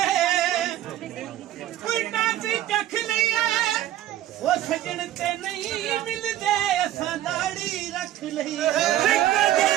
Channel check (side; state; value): left; quieter; 13.1 dB